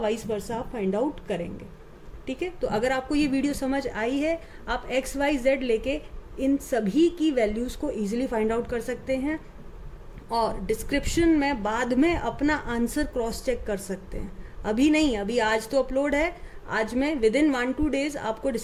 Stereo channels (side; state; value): both; identical; correlation 1.00